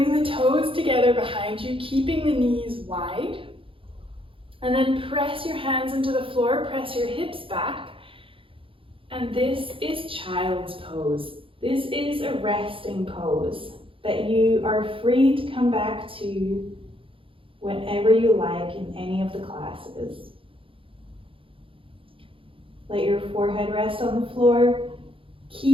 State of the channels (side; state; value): left; late; 0.26 ms